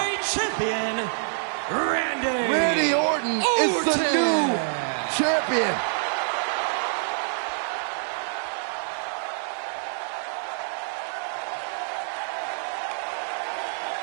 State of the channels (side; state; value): left; silent; digital silence